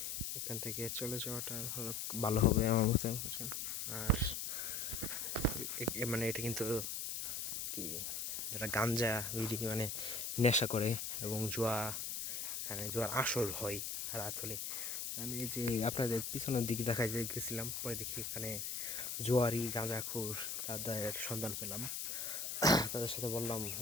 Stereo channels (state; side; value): noise; left; hiss, 3 dB below the sound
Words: এখান থেকে চলে যাওয়াটা ভালো হবে আমার মতে। আর মানে এটা কিন্তু কি, যারা গাঞ্জা বিড়ি মানে নেশা করে এবং এখানে জুয়ার আসর হয় রাত হলে। আমি এই যে আপনাদের পিছনের দিকে দেখাই গেছিলাম, পরে দেখি এখানে জুয়ারি গাঁজাখোর তাদের সন্ধান পেলাম। তাদের সাথে বললাম